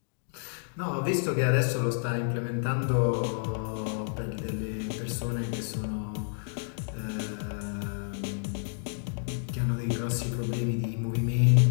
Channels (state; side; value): silent; right; digital silence